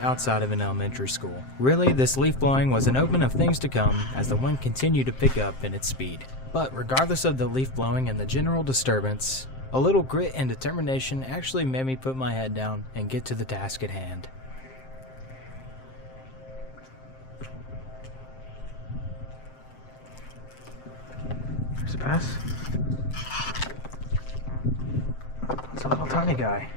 outside of an elementary school. Really, this leaf blowing was an omen of things to come as the wind continued to pick up in its speed. But regardless of the leaf blowing and the general disturbance, a little grit and determination actually made me put my head down and get to the task at hand. There's a bass. It's a little tiny guy.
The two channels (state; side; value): late; right; 7.6 ms